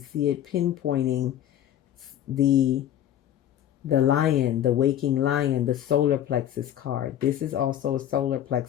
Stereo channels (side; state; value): right; quieter; 11.0 dB